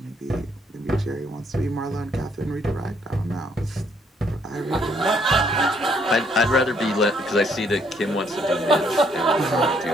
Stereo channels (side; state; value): both; normal; correlation 0.69